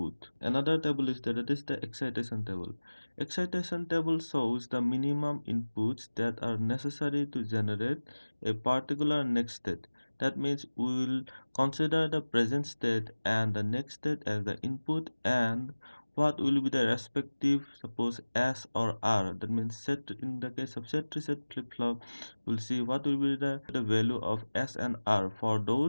Another table is that is the excitation table. Excitation table shows the minimum inputs that are necessary to generate a particular next state. That means we will consider the present state and the next state as the input and what will be the respective suppose S or R. That means set in the case of set reset flip-flop, we'll see what will be the value of S and R for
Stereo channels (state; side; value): inverted; both; correlation -1.00